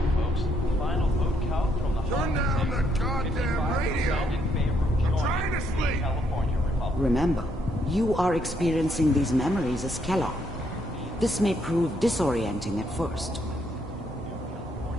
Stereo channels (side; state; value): both; normal; correlation 0.73